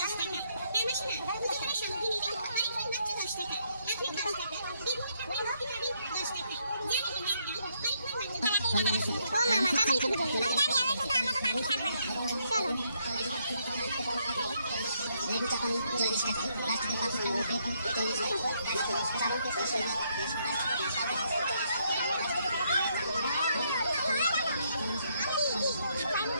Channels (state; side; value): inverted; both; correlation -0.73